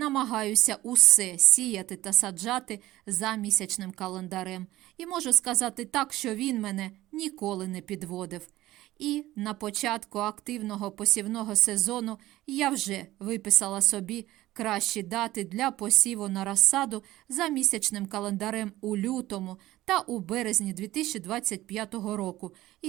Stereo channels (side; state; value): left; quieter; 16.3 dB